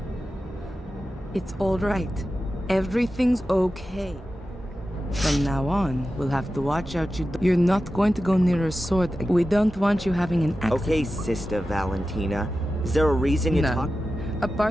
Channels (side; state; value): both; normal; correlation 0.93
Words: It's all right. Everything's okay. From now on, we'll have to watch out you're not going to go near a sword. We don't want you having an accident. Okay, Sister Valentina. Is there a reason you talk?